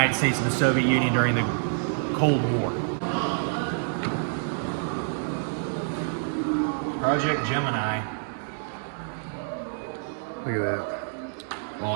States and the Soviet Union during the Cold War. Project Gemini. Look at that.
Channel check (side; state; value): left; silent; digital silence